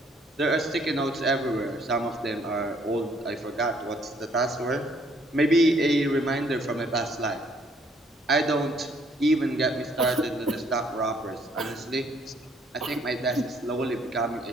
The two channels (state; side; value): normal; both; correlation 0.65